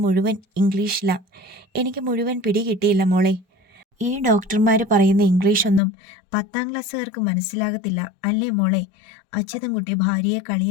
മുഴുവൻ ഇംഗ്ലീഷിലാ. എനിക്ക് മുഴുവൻ പിടികിട്ടിയില്ല മോളെ. ഈ ഡോക്ടർമാർ പറയുന്ന ഇംഗ്ലീഷൊന്നും 10ാം ക്ലാസ്സുകാർക്ക് മനസ്സിലാകത്തില്ല അല്ലേ മോളെ? അച്യുതൻകുട്ടി ഭാര്യയെ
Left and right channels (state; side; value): drops out; right; at 5.8 s